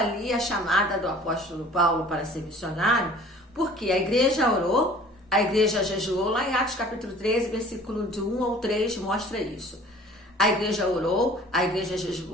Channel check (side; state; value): both; normal; correlation 0.48